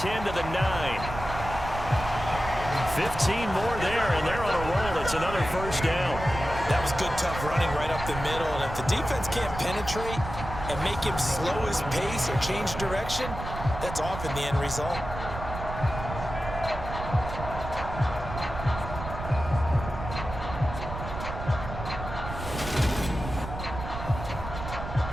to the 9. 15 more there, and they're on a roll. It's another first down. That was good, tough running right up the middle. And if the defense can't penetrate and make him slow his pace or change direction, that's often the end result.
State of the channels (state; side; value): noise; right; rumble, 8 dB below the sound